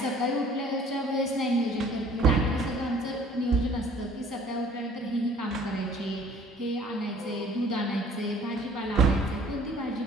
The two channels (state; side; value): normal; both; correlation 0.54